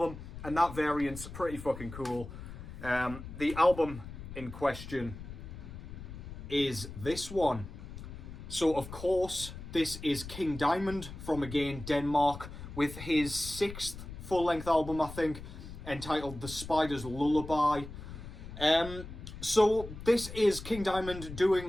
and that variant's pretty fucking cool. The album in question is this one. So of course, this is King Diamond from, again, Denmark, with his 6th full-length album, I think, entitled The Spider's Lullaby. So this is King Diamond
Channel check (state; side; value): noise; left; rumble, 11 dB below the sound